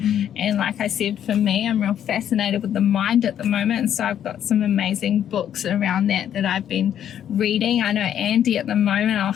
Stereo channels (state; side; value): quieter; right; 9.9 dB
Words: And like I said, for me, I'm real fascinated with the mind at the moment, and so I've got some amazing books around that I've been reading. I know Andy at the